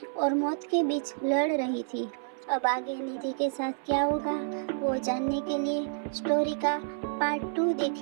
और मौत के बीच लड़ रही थी। अब आगे निधि के साथ क्या होगा वो जानने के लिए स्टोरी का पार्ट 2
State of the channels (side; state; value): left; silent; 58 dB below the other